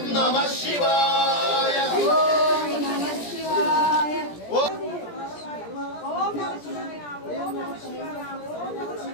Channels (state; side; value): late; right; 17 ms